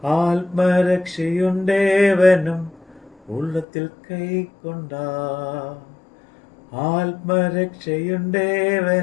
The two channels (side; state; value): right; drops out; at 3.7 s